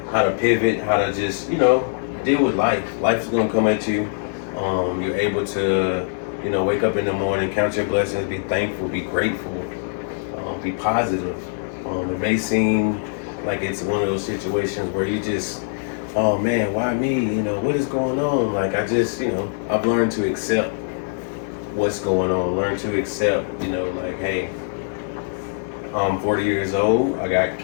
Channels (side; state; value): right; silent; digital silence